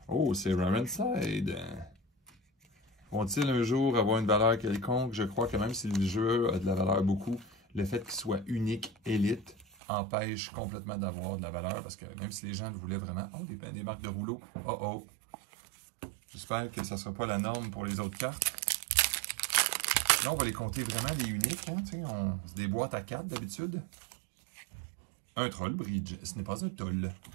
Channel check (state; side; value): drops out; left; at 9.7 s